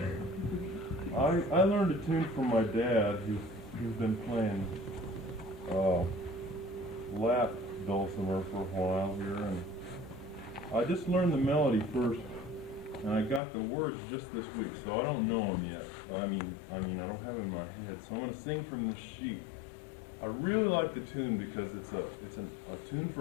I learned a tune from my dad, who's been playing lap dulcimer for a while here, and I just learned the melody first, and I got the words just this week, so I don't know them yet. I mean, I don't have them in my head, so I'm going to sing from the sheet. I really like the tune because it's a tune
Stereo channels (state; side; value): drops out; right; at 13.4 s